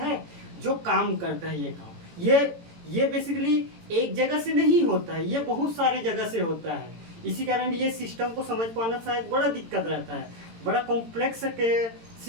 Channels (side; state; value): left; late; 18 ms